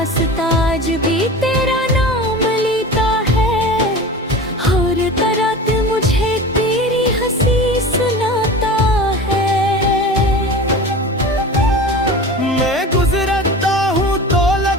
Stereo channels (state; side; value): normal; both; correlation 0.34